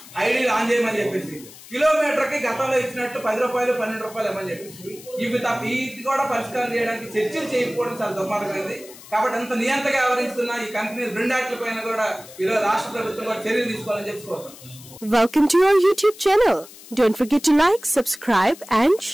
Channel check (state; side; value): noise; left; hiss, 19 dB below the sound